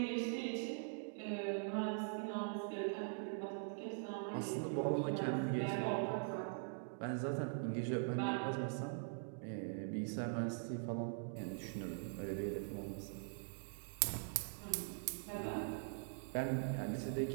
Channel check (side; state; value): left; silent; digital silence